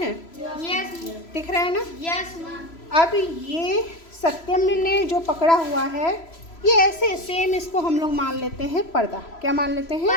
यस। दिख रहा है ना? यस। अब ये सत्यम ने जो पकड़ा हुआ है, ये ऐसे सेम इसको हम लोग मान लेते हैं पर्दा। क्या मान लेते हैं?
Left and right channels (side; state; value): right; late; 3.0 ms